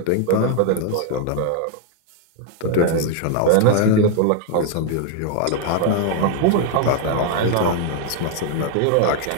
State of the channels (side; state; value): both; different; correlation 0.00